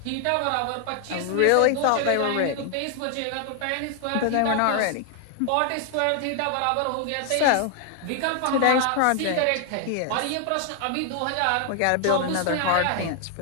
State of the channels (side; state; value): both; different; correlation 0.00